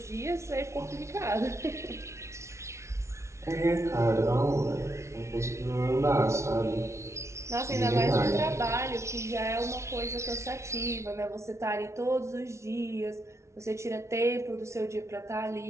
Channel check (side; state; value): left; late; 0.13 ms